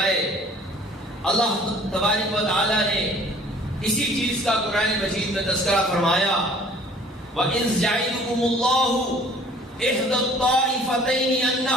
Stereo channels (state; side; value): normal; both; correlation 0.53